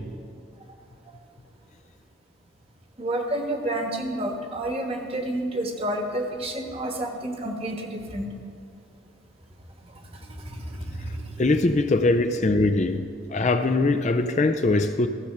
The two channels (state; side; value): normal; both; correlation 0.57